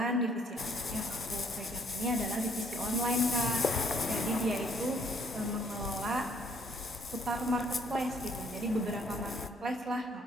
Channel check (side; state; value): both; normal; correlation 0.64